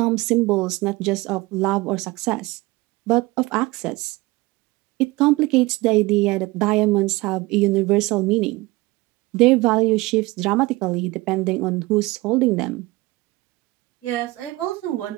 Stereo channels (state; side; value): quieter; left; 21.5 dB